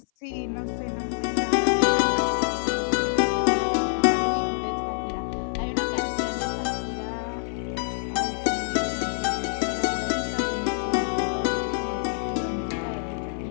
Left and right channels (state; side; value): silent; right; 57 dB below the other